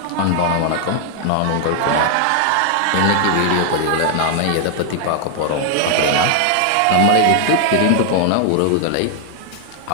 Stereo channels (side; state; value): both; different; correlation 0.00